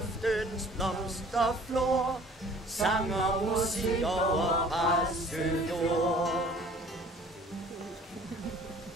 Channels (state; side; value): normal; both; correlation 0.51